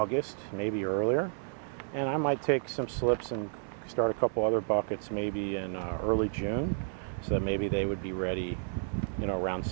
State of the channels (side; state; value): left; silent; 57 dB below the other